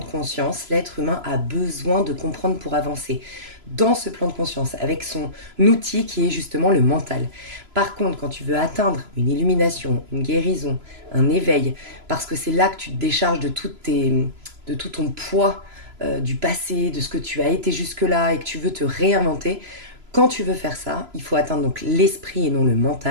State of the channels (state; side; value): late; left; 3.0 ms